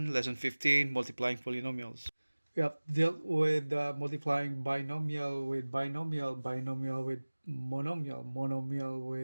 lesson 15, multiplying polynomials. We have dealt with multiplying binomial with binomial, binomial with monomial, monomial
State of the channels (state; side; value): inverted; both; correlation -1.00